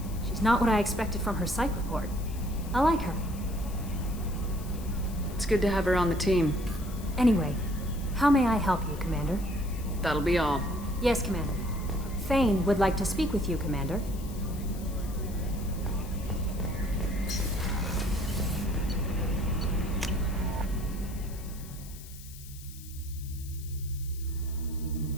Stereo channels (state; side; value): noise; left; hiss, 17 dB below the sound